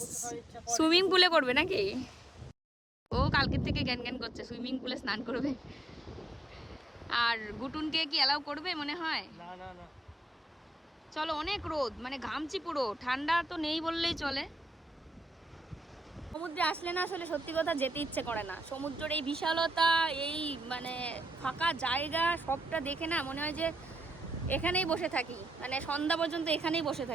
সুইমিং পুলে করবে নাকি। ও কালকের থেকে জ্ঞান জ্ঞান করছে সুইমিং পুলে স্নান করবে। আর গুটুনকে কি অ্যালাউ করবে মনে হয়? না না না, চলো, অনেক রোদ, মানে ঘামছি পুরো, ঠান্ডা তো নেই বললেই চলে। সমুদ্রে আসলে না আসলে সত্যি কথা যেতে ইচ্ছে করে না। সমুদ্রের এই বিশালতা, এই মানে ফাঁকা জায়গা, সবটা দেখে না মনে হয় যে এখানেই বসে থাকি, মানে সন্ধ্যা পর্যন্ত এখানেই বসে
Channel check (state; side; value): normal; both; correlation 0.84